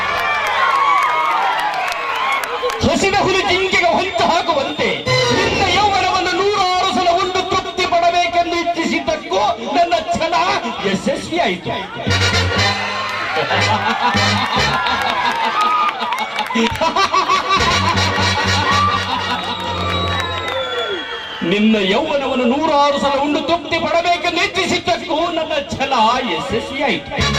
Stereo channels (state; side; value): identical; both; correlation 1.00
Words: ಹಸಿದ ಹುಲಿ ಜಿಂಕೆಗೆ ಹೊಂಚು ಹಾಕುವಂತೆ ನಿನ್ನ ಯೌವನವನ್ನು 106 ಸಲ ಉಂಡು ತೃಪ್ತಿ ಪಡಬೇಕೆಂದು ಇಚ್ಛಿಸಿದ್ದಕ್ಕೂ ನನ್ನ ಛಲ ಯಶಸ್ವಿಯಾಯಿತು. ನಿನ್ನ ಯೌವನವನ್ನು 106 ಸಲ ಉಂಡು ತೃಪ್ತಿ ಪಡಬೇಕೆಂದು ಇಚ್ಛಿಸಿದ್ದಕ್ಕೂ ನನ್ನ ಛಲ ಯಶಸ್ವಿಯಾಯಿತು.